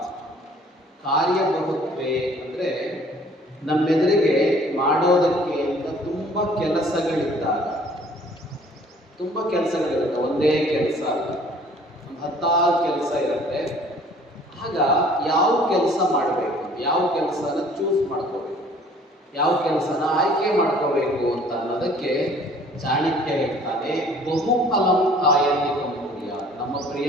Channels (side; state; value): both; normal; correlation 0.54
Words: ಕಾರ್ಯಬಹುತ್ವೇ ಅಂದರೆ ನಮ್ಮೆದುರಿಗೆ ಮಾಡೋದಕ್ಕೆ ಅಂತ ತುಂಬ ಕೆಲಸಗಳಿದ್ದಾಗ, ಒಂದೇ ಕೆಲಸ ಅಲ್ಲ, ಒಂದು 10 ಕೆಲಸ ಇರುತ್ತೆ. ಆಗ ಯಾವ ಕೆಲಸ ಮಾಡಬೇಕು, ಯಾವ ಕೆಲಸನ ಚೂಸ್ ಮಾಡ್ಕೋಬೇಕು, ಯಾವ ಕೆಲಸನ ಆಯ್ಕೆ ಮಾಡ್ಕೋಬೇಕು ಅಂತ ಅನ್ನೋದಕ್ಕೆ ಚಾಣಕ್ಯ ಹೇಳ್ತಾನೆ, ಬಹುಫಲಂ ಆಯತಿಕಂ ಕುರ್ಯಾತ್. ನಮ್ಮ